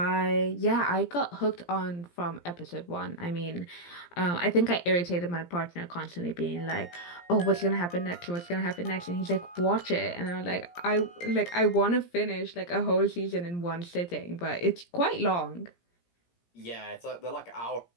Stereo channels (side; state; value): right; late; 17 ms